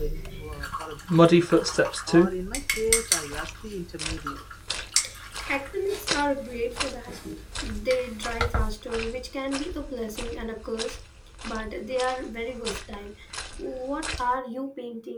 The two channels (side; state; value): both; identical; correlation 1.00